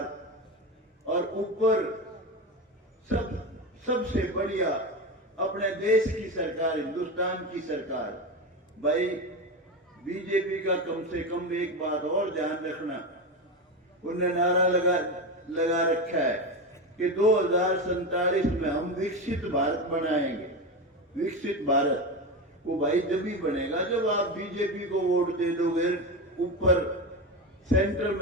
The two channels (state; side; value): normal; both; correlation 0.18